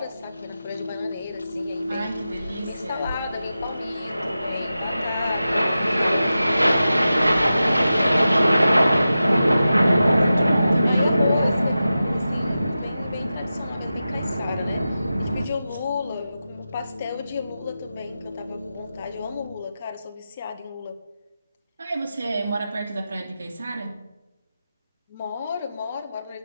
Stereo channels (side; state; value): both; inverted; correlation -0.93